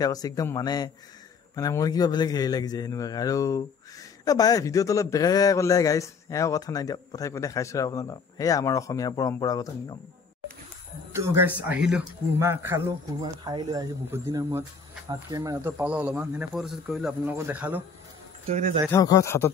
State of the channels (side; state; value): right; quieter; 5.2 dB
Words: কৈছে একদম মানে মোৰ কিবা বেলেগ হেৰি লাগি যায় সেনেকুৱাকৈ আৰু বাই ভিডিঅ'টো অলপ বেলেগে ক'লে গাইছ এও কথা নাই দিয়ক পঠাই দেখাইছোঁ আৰু আপোনালোকক সেয়া আমাৰ অসমীয়া পৰম্পৰাগত নিয়ম তো গাইছ আহিলোঁ কুৰমা খালোঁ কুৰমা খাই লৈ আহিছোঁ বহুত দিনৰ মূৰত হাত কেমেৰাটো পালোঁ অলপমান সেনে ফটোশ্বুট কৰিলোঁ আপোনালোকক দেখালোঁ তো এতিয়া যাই থাকক ঘৰত হাতত